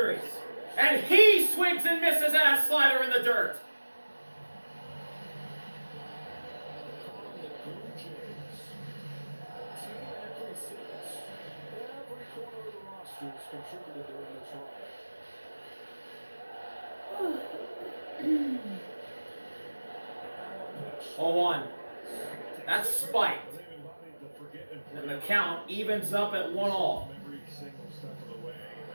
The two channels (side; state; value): both; inverted; correlation -1.00